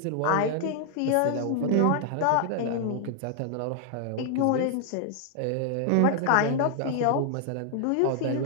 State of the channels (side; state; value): both; different; correlation 0.00